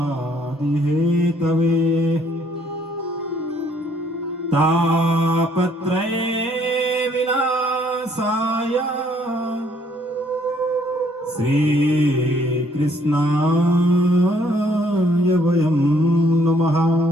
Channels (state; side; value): normal; both; correlation 0.65